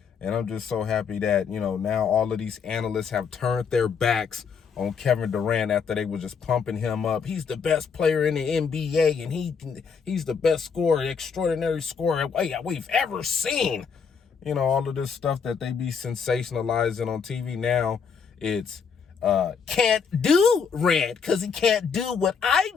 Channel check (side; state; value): right; quieter; 6.1 dB